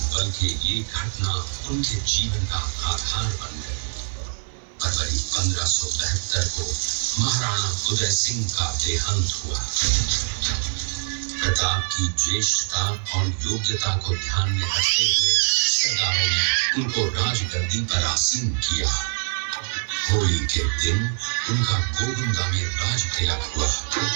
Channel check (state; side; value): silent; left; digital silence